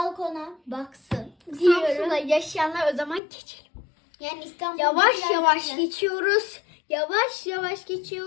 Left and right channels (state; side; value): drops out; right; at 3.2 s